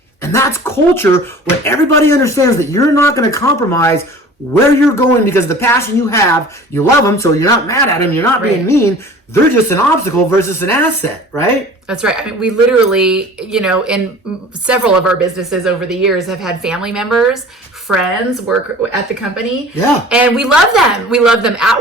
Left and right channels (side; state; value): both; normal; correlation 0.43